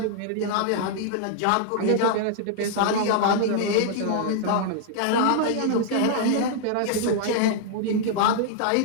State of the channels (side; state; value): both; different; correlation -0.01